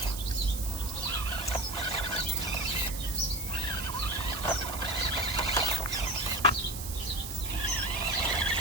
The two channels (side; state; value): right; noise; hiss, 8 dB below the sound